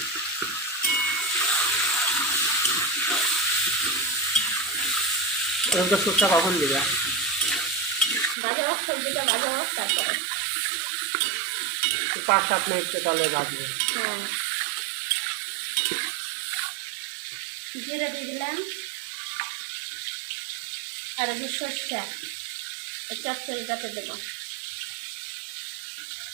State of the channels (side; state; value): left; drops out; at 8.3 s